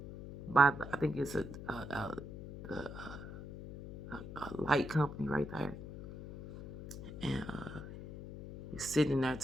I think it's a light company right there. And he's sitting there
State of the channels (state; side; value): noise; left; hum, 11 dB below the sound